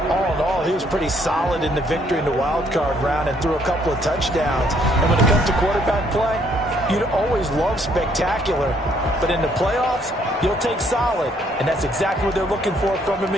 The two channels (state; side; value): normal; both; correlation 0.67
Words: All in all, he was pretty solid in the victory in the wild card round and threw a couple of touchdowns. And when it comes to quarterback play, you'd always love spectacular. But in the playoffs, you'll take solid. And that's exactly what they're looking for from him